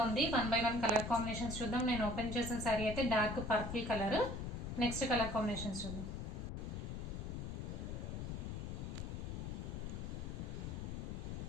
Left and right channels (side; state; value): left; noise; rumble, 4 dB below the sound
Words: ఉంది. 1 by 1 కలర్ కాంబినేషన్స్ చూద్దాం. నేను ఓపెన్ చేసిన శారీ అయితే dark purple colour. Next colour combinations చూద్దాం.